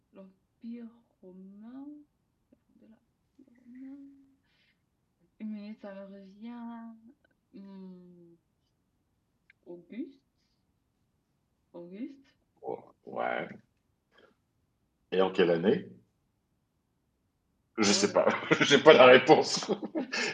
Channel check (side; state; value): both; identical; correlation 1.00